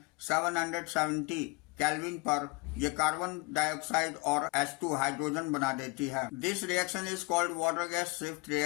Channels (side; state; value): right; quieter; 26.1 dB